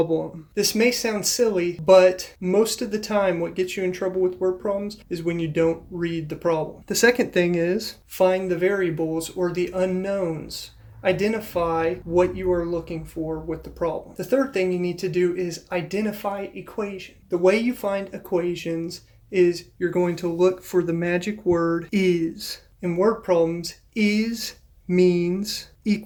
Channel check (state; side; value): identical; both; correlation 1.00